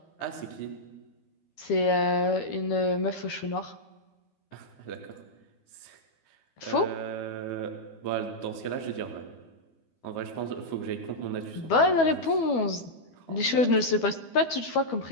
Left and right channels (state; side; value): late; right; 12 ms